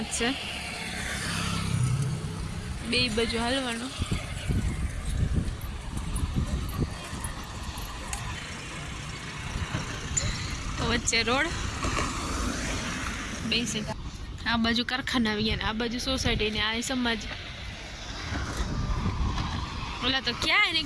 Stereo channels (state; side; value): identical; both; correlation 1.00